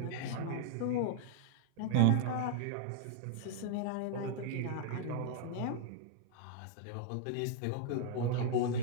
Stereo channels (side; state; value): both; different; correlation -0.01